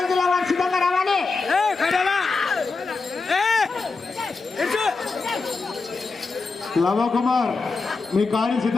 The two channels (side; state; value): right; quieter; 4.2 dB